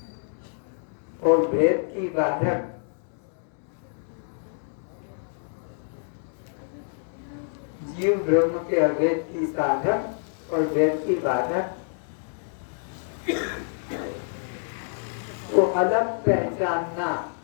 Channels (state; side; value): silent; right; digital silence